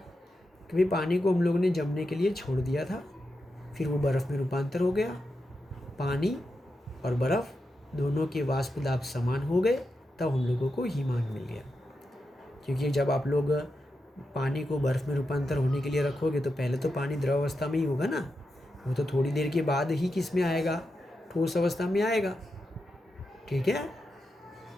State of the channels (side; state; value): both; normal; correlation 0.88